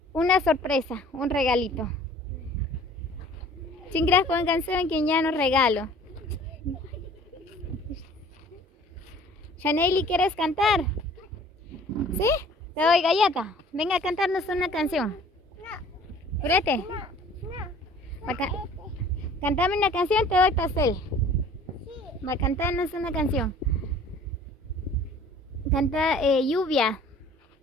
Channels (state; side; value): normal; both; correlation 0.50